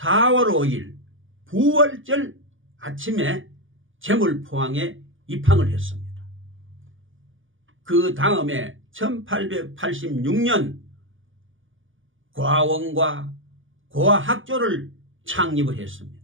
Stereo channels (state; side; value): late; left; 0.58 ms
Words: 5일 부활절 아침에 제물포항에 입항을 했습니다. 그 다음에 1886년 과원과 고아학교를 창립을